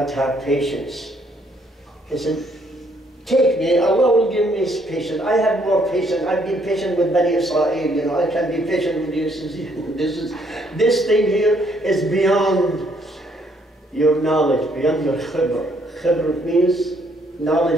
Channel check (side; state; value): both; normal; correlation 0.68